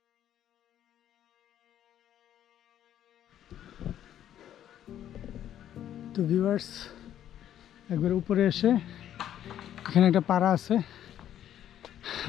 তো ভিউয়ার্স, একবার উপরে এসে এখানে একটা পাড়া আছে,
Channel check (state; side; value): quieter; right; 11.0 dB